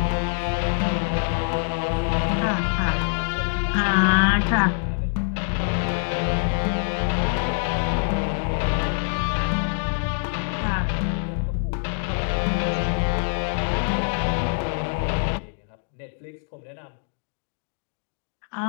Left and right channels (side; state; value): right; silent; digital silence